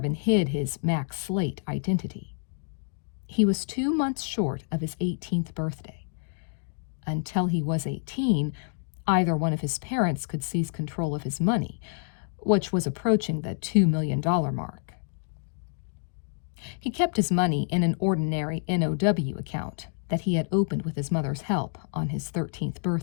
hid his Max Slate identity. He was 2 months short of his 18th birthday. Until he was 18, either one of his parents could seize control of his money, which was approaching the $2 million mark. He kept his money in an ordinary NOW account that he had opened with his mother's help on his 13th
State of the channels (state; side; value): silent; right; digital silence